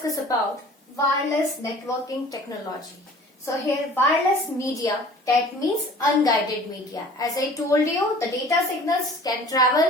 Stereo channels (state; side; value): normal; both; correlation 0.47